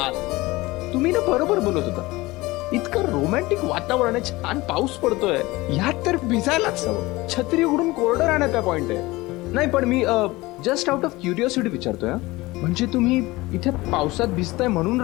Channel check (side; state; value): right; quieter; 20.5 dB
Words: तुम्ही ना बरोबर बोलत होता. इतकं रोमॅन्टिक वातावरण आहे, छान पाऊस पडतोय, ह्यात तर भिजायलाच हवं. छत्री उघडून कोरडं राहण्याचा पॉइंट आहे. नाही पण मी जस्ट आउट ऑफ क्युरिओसिटी विचारतोय. म्हणजे तुम्ही इथे पावसात भिजताय म्हणून